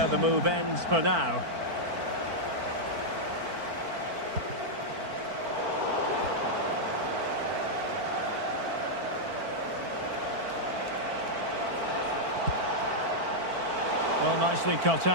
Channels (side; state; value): left; late; 4.5 ms